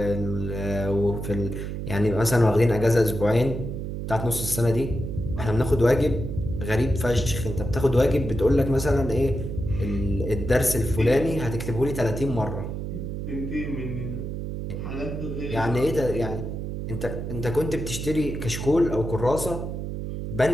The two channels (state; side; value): noise; right; hum, 5 dB below the sound